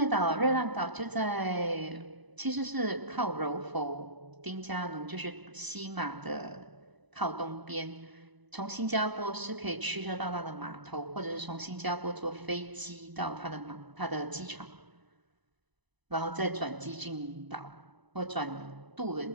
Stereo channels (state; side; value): late; left; 1.0 ms